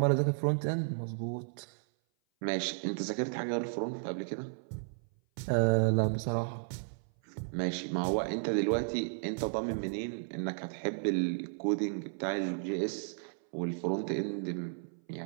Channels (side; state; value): left; silent; 55 dB below the other